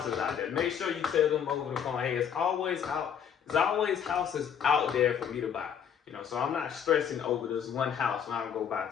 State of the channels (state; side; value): quieter; right; 8.1 dB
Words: out there. Make sure you tell them over the phone, hey, there's always houses out there for me to buy. So I'm not stressing over this one house when I go buy